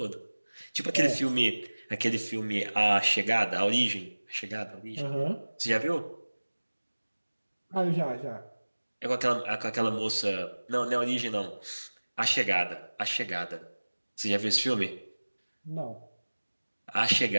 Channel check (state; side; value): inverted; both; correlation -1.00